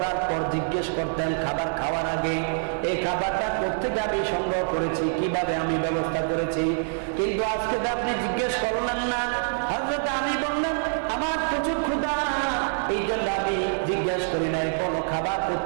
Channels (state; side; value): silent; left; 61 dB below the other